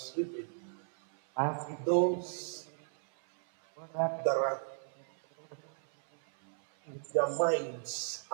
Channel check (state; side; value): silent; left; 54 dB below the other